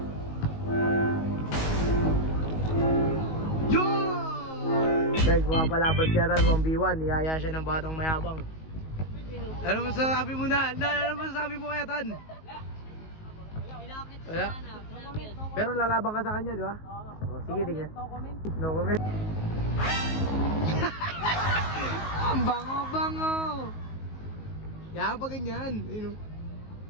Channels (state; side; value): late; right; 19 ms